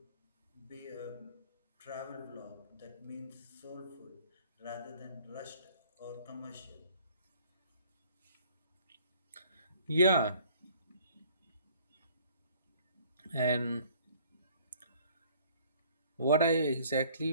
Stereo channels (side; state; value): both; inverted; correlation -0.56